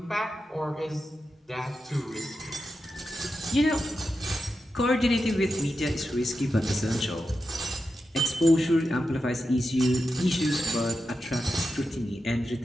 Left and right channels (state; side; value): normal; both; correlation 0.89